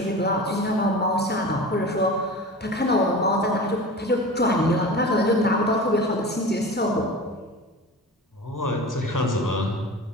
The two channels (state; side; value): normal; both; correlation 0.33